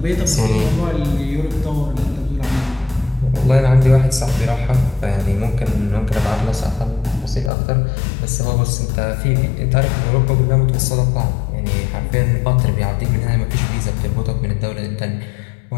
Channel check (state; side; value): drops out; right; at 7.5 s